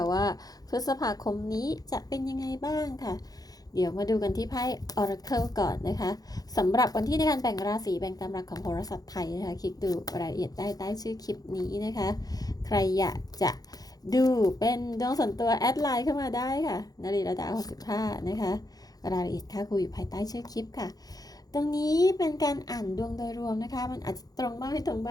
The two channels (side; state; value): right; late; 0.18 ms